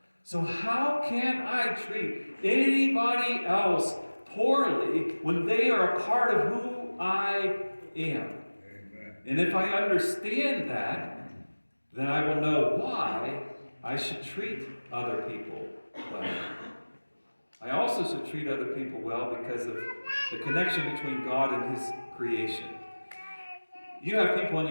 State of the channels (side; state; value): both; inverted; correlation -1.00